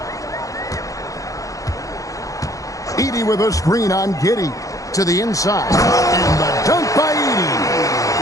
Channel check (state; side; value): late; right; 0.16 ms